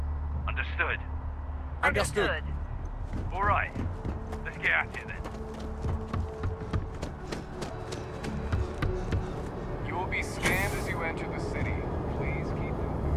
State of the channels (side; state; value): both; identical; correlation 1.00